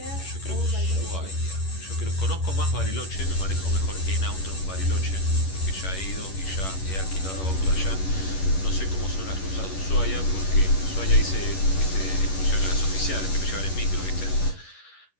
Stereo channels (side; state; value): right; late; 11 ms